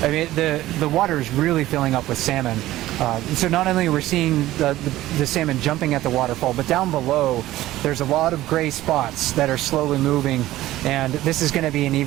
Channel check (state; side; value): quieter; left; 15.6 dB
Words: I mean, the water is really filling up with salmon. So not only are we seeing the salmon jumping at the waterfall, but down below, there's a lot of gray spots that are slowly moving. And this is going to be an